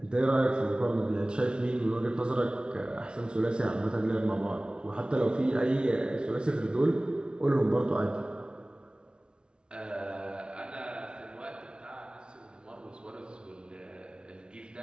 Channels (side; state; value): left; late; 0.056 ms